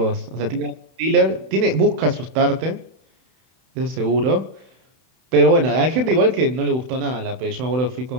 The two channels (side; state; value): left; late; 31 ms